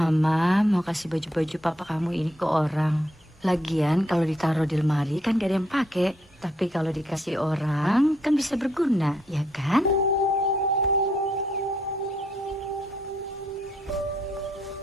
mau kasih baju-baju papa kamu ini ke orang. Lagian kalau ditaruh di lemari kan gak ada yang pakai. Tapi kalau dikasih orang kan bisa berguna, ya kan?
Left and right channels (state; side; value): normal; both; correlation 0.73